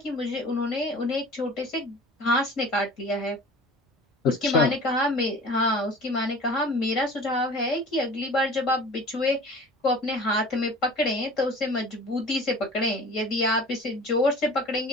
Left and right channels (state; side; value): normal; both; correlation 0.42